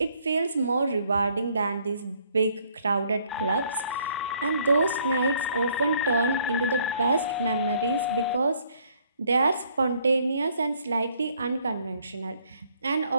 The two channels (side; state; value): both; inverted; correlation -0.64